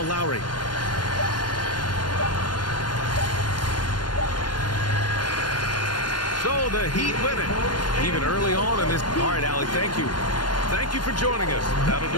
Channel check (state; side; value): late; right; 0.71 ms